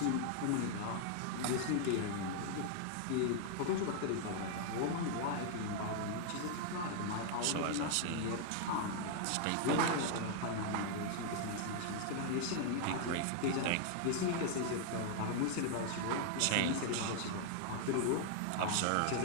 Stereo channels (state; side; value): different; both; correlation 0.00